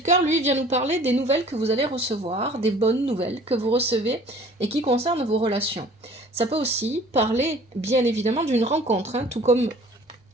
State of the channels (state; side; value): normal; both; correlation 0.50